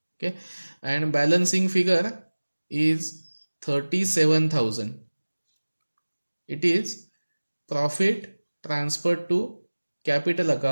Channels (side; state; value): both; inverted; correlation -1.00